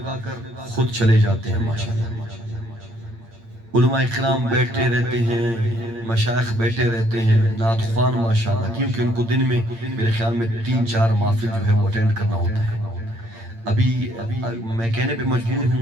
خود چلے جاتے ہیں ماشاءاللہ علماء اکرام بیٹھے رہتے ہیں مشائخ بیٹھے رہتے ہیں نعت خوان ماشاءاللہ کیونکہ ان کو دن میں میرے خیال میں 3-4 محفل جو ہے وہ اٹینڈ کرنا ہوتا ہے ابھی میں کہنے پہ مجبور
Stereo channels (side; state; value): left; late; 8.8 ms